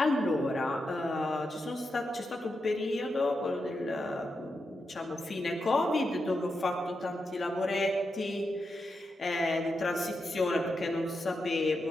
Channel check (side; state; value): both; normal; correlation 0.86